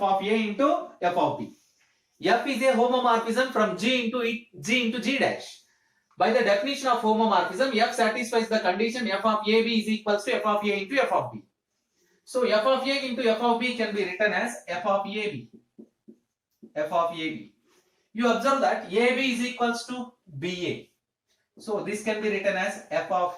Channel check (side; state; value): both; identical; correlation 1.00